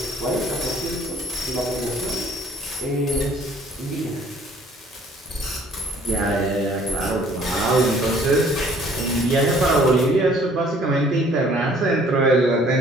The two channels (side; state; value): both; normal; correlation 0.57